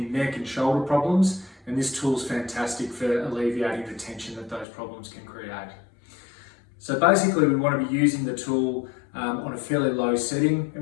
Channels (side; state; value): right; drops out; at 4.7 s